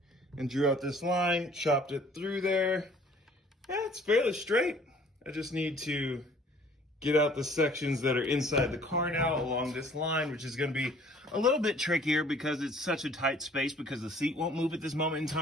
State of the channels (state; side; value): normal; both; correlation 0.55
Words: and drew out this line, chopped it through there. Yeah, it's fairly straight. I just need to get out the sections that are inside the car now along this line, which is going to be a little bit trickier because it's such a tight space, because the seat won't move at this moment in